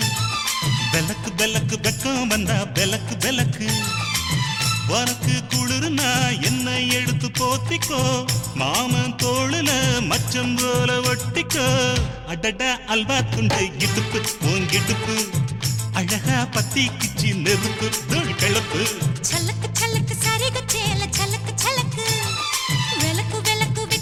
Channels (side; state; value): both; identical; correlation 1.00